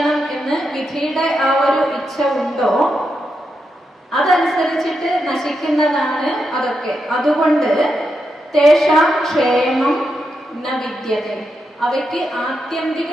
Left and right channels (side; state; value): both; normal; correlation 0.85